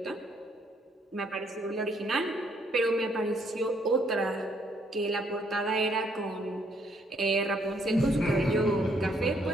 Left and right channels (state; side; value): normal; both; correlation 0.69